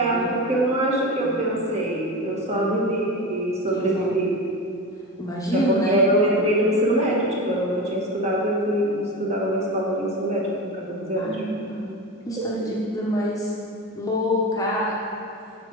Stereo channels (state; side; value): normal; both; correlation 0.25